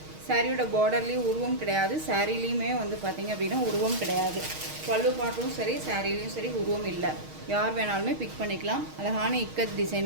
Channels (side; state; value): left; late; 6.4 ms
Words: சாரியோட பார்டர்லேயும் உருவம் கிடையாது, சாரீலேயுமே வந்து பார்த்திங்க அப்படின்னா உருவம் கிடையாது. பல்லு பாட்டும் சரி சாரீலையும் சரி உருவம் இல்லை. யார் வேணாலுமே பிக் பண்ணிக்கலாம். அழகான இக்கத்